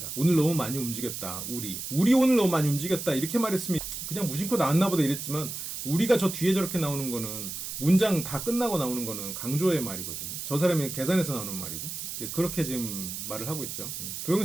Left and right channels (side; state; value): right; noise; hiss, 6 dB below the sound